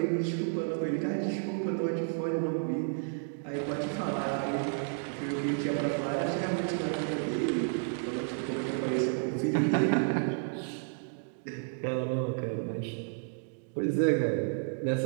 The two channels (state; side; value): silent; left; 57 dB below the other